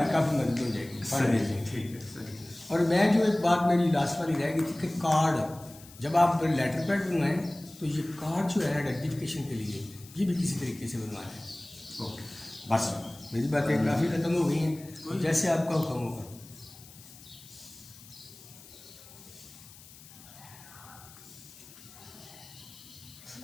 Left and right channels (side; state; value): left; noise; hiss, 20 dB below the sound